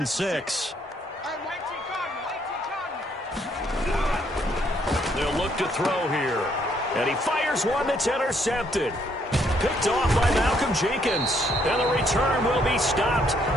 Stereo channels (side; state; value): both; normal; correlation 0.69